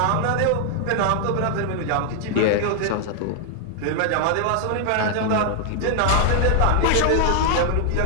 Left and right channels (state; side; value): different; both; correlation 0.00